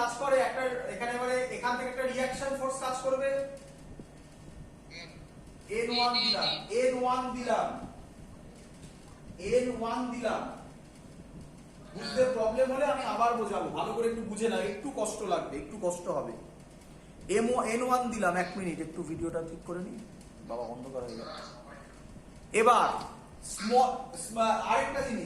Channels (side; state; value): both; identical; correlation 1.00